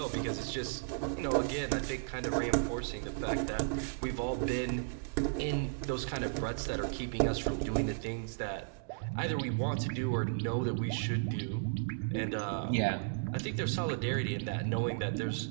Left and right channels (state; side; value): silent; left; digital silence